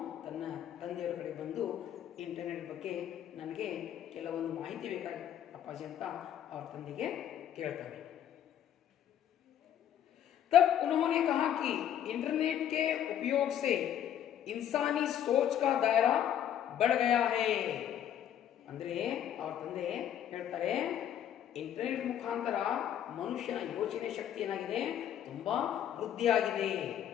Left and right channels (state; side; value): quieter; right; 10.2 dB